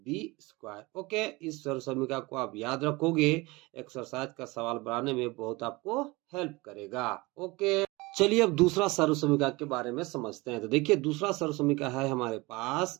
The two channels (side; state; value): left; quieter; 23.2 dB